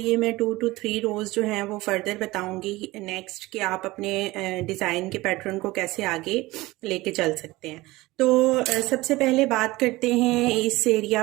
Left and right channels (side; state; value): left; quieter; 19.9 dB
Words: मैं 2 to 3 रोज़ जो हैं वो फर्दर बताऊंगी नेक्स्ट कि आप अपने डिज़ाइन के पैटर्न को कैसे आगे लेके चल सकते हैं। तो सबसे पहले बात करते हैं इस